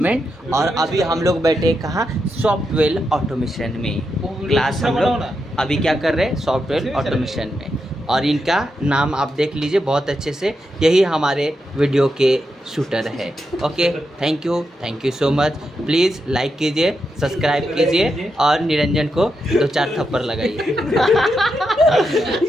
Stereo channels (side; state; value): both; normal; correlation 0.85